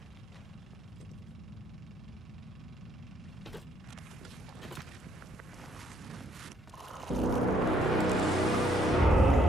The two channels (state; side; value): normal; both; correlation 0.69